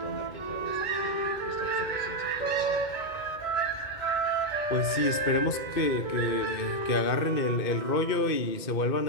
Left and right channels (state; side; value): late; right; 2.2 ms